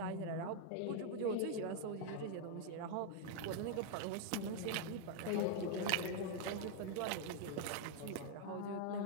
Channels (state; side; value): different; both; correlation 0.00